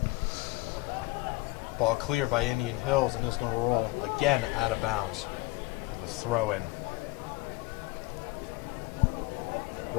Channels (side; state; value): right; quieter; 21.2 dB